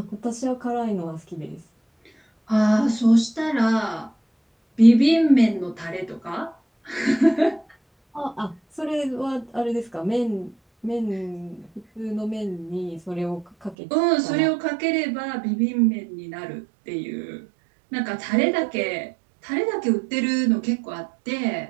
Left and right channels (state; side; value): drops out; left; at 13.8 s